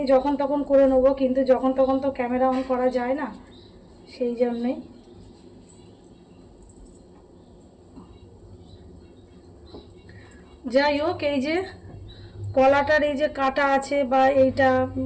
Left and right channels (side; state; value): both; identical; correlation 1.00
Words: যখন তখন করে নেবো, কিন্তু যখন তখন তো ক্যামেরা অন করা যায় না, সেই জন্যই। যাই হোক, এই যে কলাটার এই যে কাটা আছে বা এইটা